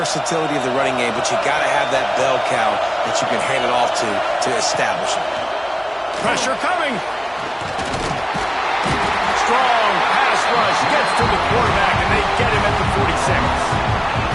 of the running game, but you got to have that bell cow that you can hand it off to establish it. Pressure coming. Strong pass rush gets to the quarterback, and they get him at the 46.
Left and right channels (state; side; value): identical; both; correlation 1.00